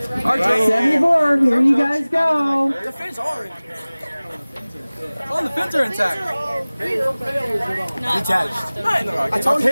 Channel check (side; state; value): both; inverted; correlation -0.99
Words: 74, here you guys go. The fins are oh, the fins are intact. Detached. I told you